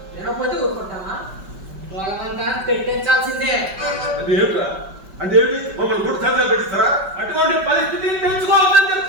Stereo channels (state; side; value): late; left; 5.2 ms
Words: వినకపోతే ఊరుకుంటామా? బలవంతా పెట్టించాల్సిందే. అంటే ఏమిట్రా? అంటే ఏమిటి? మమ్మల్ని కూడా సంతకాలు పెట్టిస్తారా? అటువంటి పరిస్థితిని తెలుసుకోవాలని